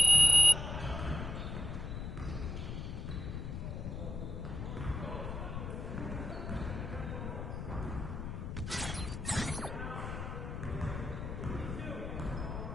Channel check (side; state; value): left; noise; rumble, 5 dB below the sound